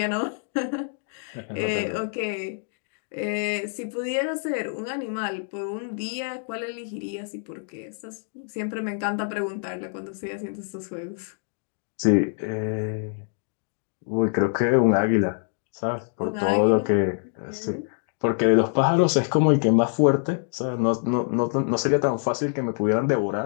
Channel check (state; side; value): silent; right; 61 dB below the other